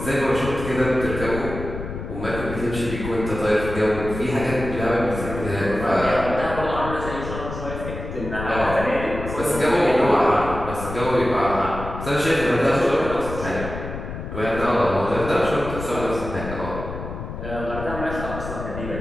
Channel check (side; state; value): left; noise; rumble, 8 dB below the sound